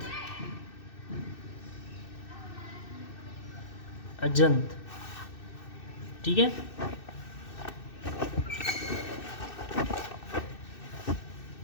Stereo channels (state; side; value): late; right; 2.6 ms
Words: अजंत, ठीक है।